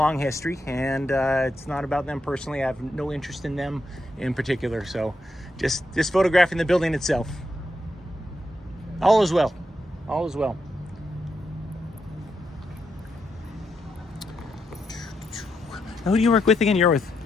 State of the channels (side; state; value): both; normal; correlation 0.82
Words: history, and it's not about them personally. I have no interest in them in particular. So just photographing the building itself. All is well. All is well. Now, who do you work with again? You're with,